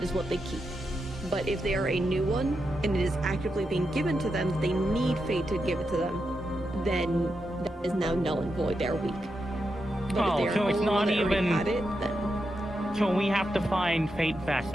is what they keep. But if they are a new one and it is actively being given to them, they need Fate to give it to them. Then that is now null and void. They are weak. But Oh, if they are so it's only not one that already even- had it, then So we have to find Fate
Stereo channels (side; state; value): both; normal; correlation 0.86